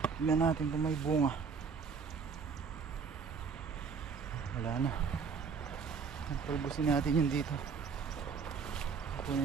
Tignan natin kung may bunga. Wala na. Talbosin natin yun dito.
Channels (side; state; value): left; quieter; 5.7 dB